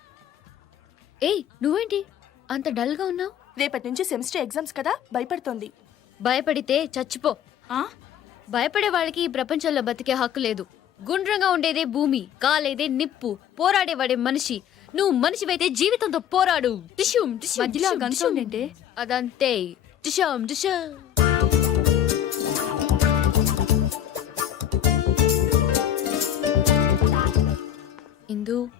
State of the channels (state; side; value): quieter; right; 10.1 dB